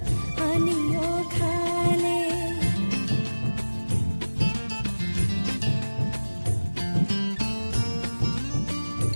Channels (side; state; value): both; inverted; correlation -1.00